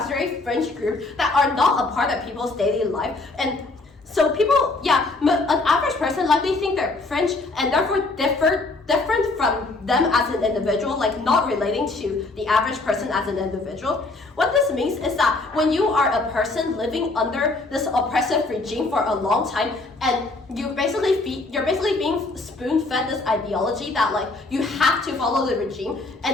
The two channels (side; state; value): right; quieter; 3.3 dB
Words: very fringe group that are not a part of people's daily life. And so people, an average person likely think they're fringe and therefore different from them as an individual, not relating to the average person as an individual. What this means is that when you are a person living under this oppressive regime for a long time, and you're basically being spoon-fed this ideology that you have to follow the regime,